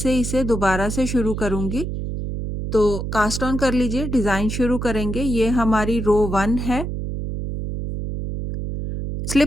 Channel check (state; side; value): noise; right; hum, 4 dB below the sound